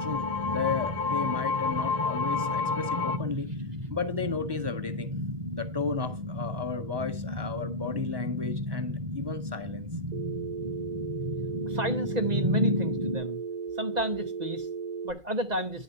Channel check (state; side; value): late; left; 1.1 ms